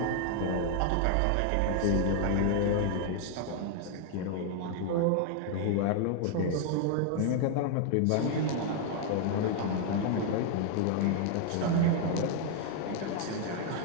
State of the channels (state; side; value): different; both; correlation 0.00